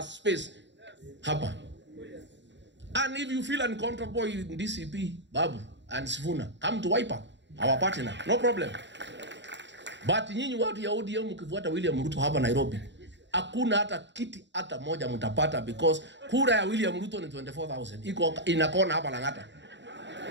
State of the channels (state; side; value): late; left; 0.52 ms